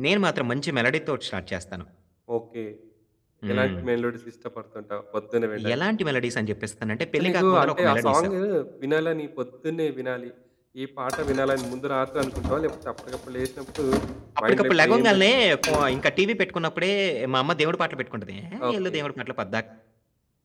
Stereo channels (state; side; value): identical; both; correlation 1.00